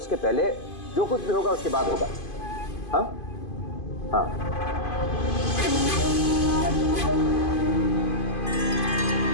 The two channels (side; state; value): right; late; 2.5 ms